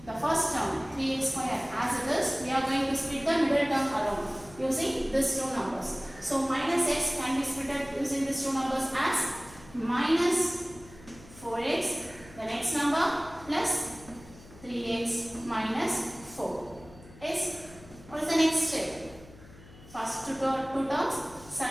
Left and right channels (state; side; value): noise; left; hum, 20 dB below the sound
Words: the first term 3x square as it is. We are going to split the middle term alone using these two numbers. So minus x can be split using these two numbers as minus 4x, the next number, plus 3x minus 4. Yes? What is the next step? First two terms,